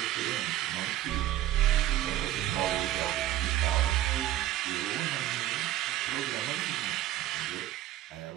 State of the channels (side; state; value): left; quieter; 13.7 dB